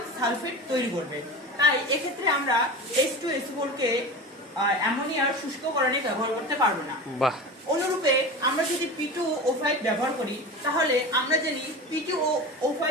সালফেট তৈরি করবে। তাই এক্ষেত্রে আমরা H2SO4 কে অ্যামোনিয়ার শুষ্ককরণে ব্যবহার করতে পারবো না। বাহ। অনুরূপে আমরা যদি P2O5 ব্যবহার করি তাহলে আমরা জানি P2O5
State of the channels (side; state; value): both; normal; correlation 0.30